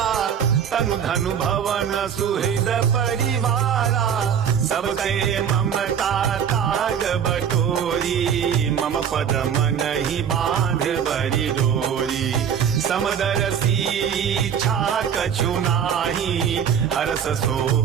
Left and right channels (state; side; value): quieter; left; 8.1 dB